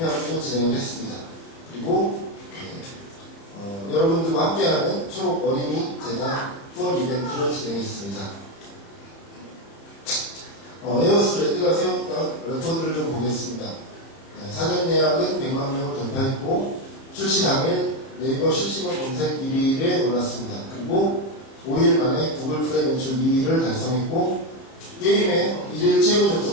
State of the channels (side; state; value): right; late; 30 ms